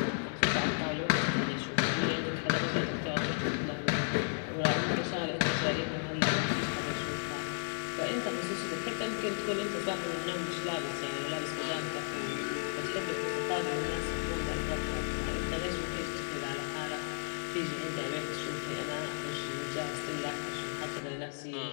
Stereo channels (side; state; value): right; silent; digital silence